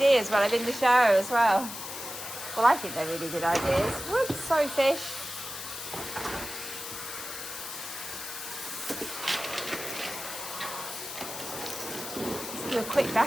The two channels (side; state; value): left; noise; hiss, 9 dB below the sound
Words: while I'm in the shower as well. Well, I think they're really good ideas. Whoops, sorry fish. Let's do a quick